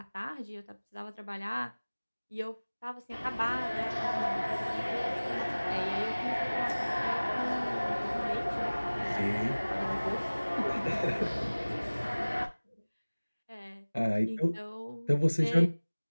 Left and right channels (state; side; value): inverted; both; correlation -1.00